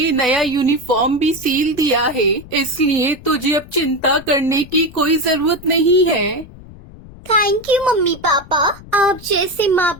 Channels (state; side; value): noise; left; rumble, 19 dB below the sound